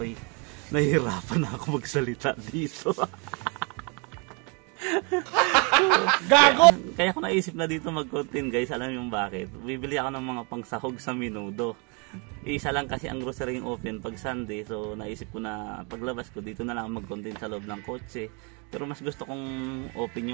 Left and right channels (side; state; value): left; quieter; 33.5 dB